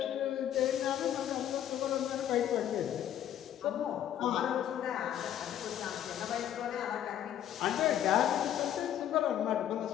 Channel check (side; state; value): right; quieter; 10.8 dB